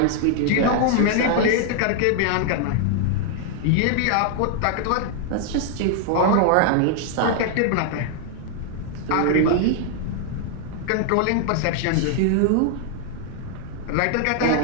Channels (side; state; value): both; different; correlation 0.00